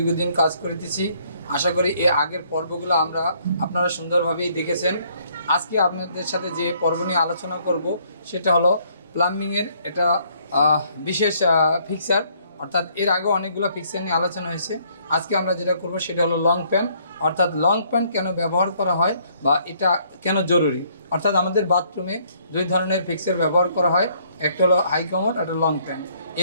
কাজ করতেছি। আশা করি এই আগের পর্বগুলো আপনারা সুন্দরভাবেই দেখেছেন। আজকে আপনাদের সাথে যে পর্ব নিয়ে আলোচনা করব সেটা হলো প্লাম্বিংয়ের এটা বিশেষ ফিক্সার, অর্থাৎ এর আগে অনেকগুলো ফিক্সার নিয়ে আলোচনা হয়েছে। আজকে আমরা যেটা করব সেটা হলো লং প্যান্ট, অর্থাৎ লং প্যান্ট কেন ব্যবহার করা হয় বা এটা কেন জরুরি। অর্থাৎ আমাদের বাথরুমে দুই ধরনের ফিক্সার ব্যবহার করা হয়, একটা হলো হাই কমোড, একটা লং প্যান্ট।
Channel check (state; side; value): inverted; both; correlation -0.65